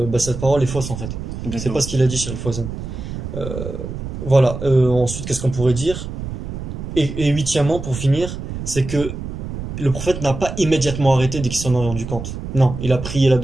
cette parole est fausse en fait. C'est Exactement. pas ce qu'il a dit, Cheikh Fawzan. Voilà, ensuite, qu'est-ce qu'on pourrait dire? Et huitièmement, pour finir, c'est que le prophète n'a pas immédiatement arrêté dès qu'il s'en est rendu compte. Non, il a prié la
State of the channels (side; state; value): right; noise; rumble, 7 dB below the sound